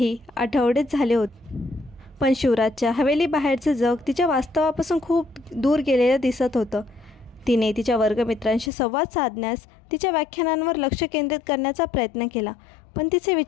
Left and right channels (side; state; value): right; drops out; at 8.7 s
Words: आठवडेच झाले होते, पण शिवराजच्या हवेली बाहेरचे जग तिच्या वास्तवापासून खूप दूर गेलेलं दिसत होतं. तिने तिच्या वर्गमित्रांशी संवाद साधण्यास, तिच्या व्याख्यानांवर लक्ष केंद्रित करण्याचा प्रयत्न केला, पण तिचे